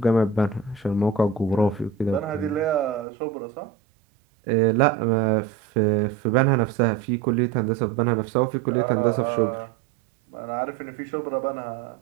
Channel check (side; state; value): left; drops out; at 3.1 s